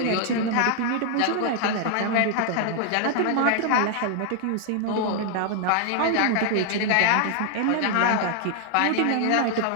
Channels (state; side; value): different; both; correlation 0.00